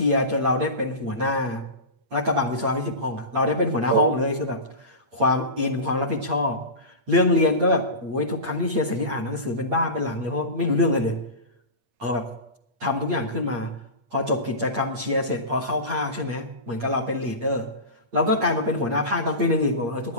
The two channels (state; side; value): late; left; 8.5 ms